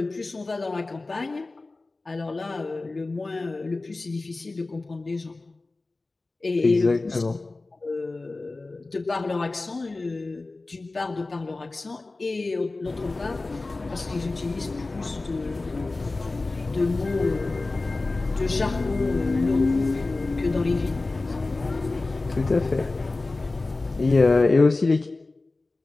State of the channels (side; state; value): right; quieter; 3.3 dB